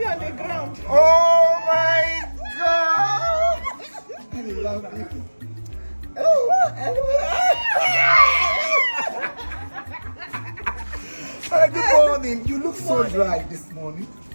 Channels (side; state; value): both; inverted; correlation -1.00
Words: on the ground. Oh my God! I love you. Good morning. You look so dry this morning.